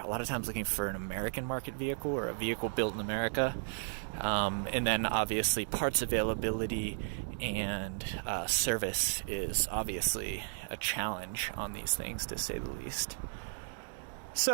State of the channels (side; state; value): left; silent; digital silence